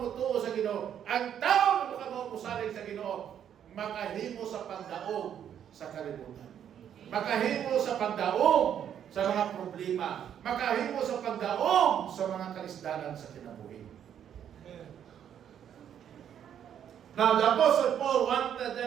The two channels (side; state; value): left; quieter; 9.3 dB